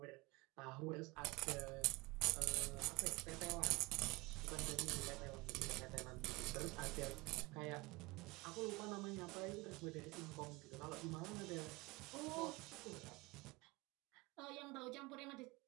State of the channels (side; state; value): left; quieter; 23.6 dB